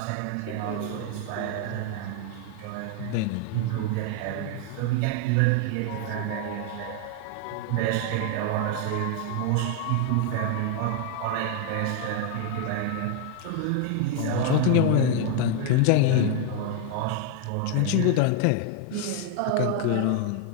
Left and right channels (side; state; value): both; different; correlation 0.00